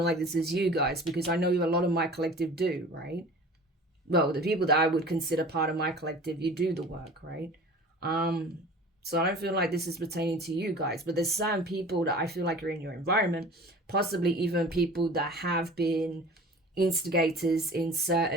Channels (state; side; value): normal; both; correlation 0.42